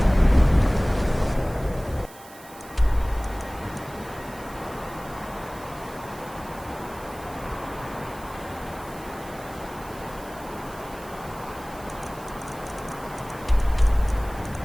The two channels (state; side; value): noise; right; hiss, 20 dB below the sound